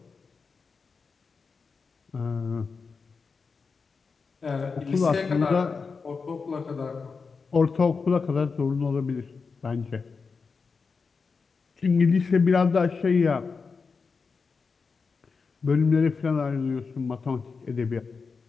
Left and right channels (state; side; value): quieter; right; 4.9 dB